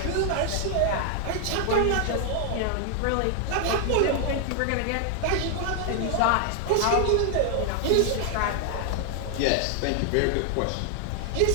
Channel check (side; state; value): both; different; correlation 0.00